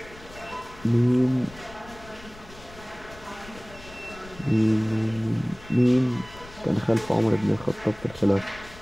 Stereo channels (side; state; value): left; noise; rumble, 19 dB below the sound